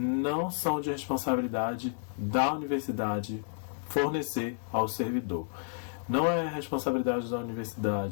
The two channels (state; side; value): silent; right; digital silence